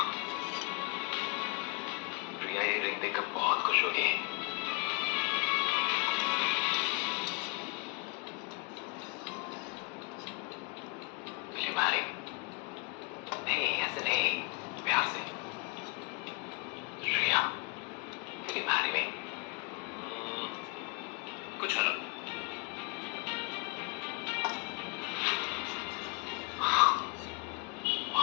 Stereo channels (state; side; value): quieter; right; 30.5 dB